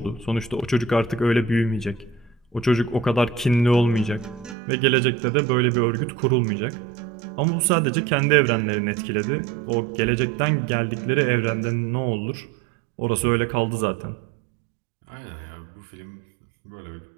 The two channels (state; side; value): drops out; left; at 4.5 s